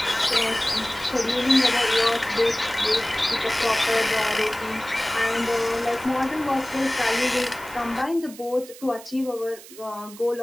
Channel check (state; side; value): noise; right; hiss, 18 dB below the sound